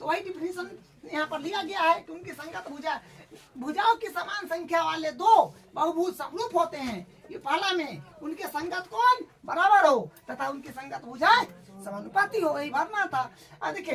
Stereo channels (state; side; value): identical; both; correlation 1.00